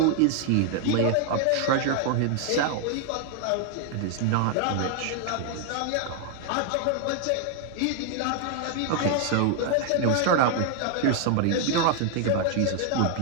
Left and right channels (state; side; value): different; both; correlation 0.00